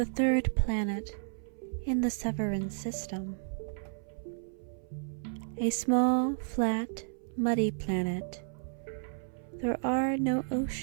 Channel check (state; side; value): silent; left; 56 dB below the other